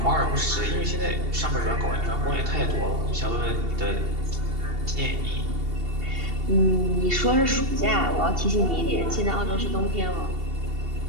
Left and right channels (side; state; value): left; late; 2.7 ms